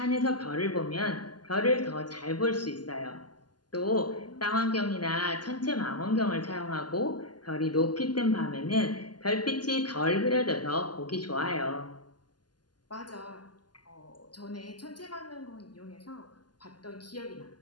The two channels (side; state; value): right; late; 0.70 ms